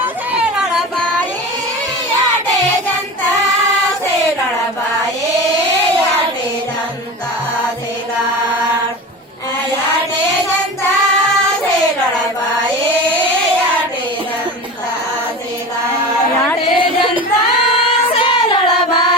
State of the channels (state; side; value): normal; both; correlation 0.30